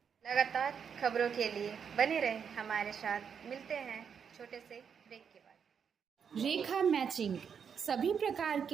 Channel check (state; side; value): quieter; left; 7.1 dB